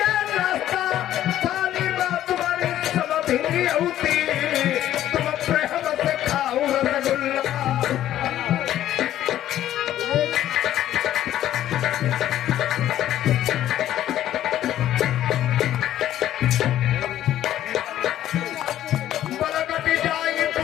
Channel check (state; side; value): quieter; right; 12.4 dB